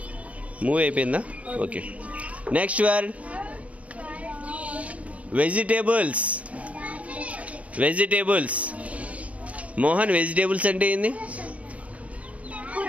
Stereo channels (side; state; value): left; late; 0.066 ms